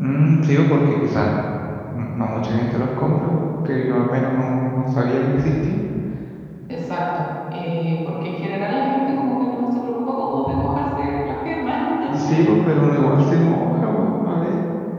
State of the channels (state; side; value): identical; both; correlation 1.00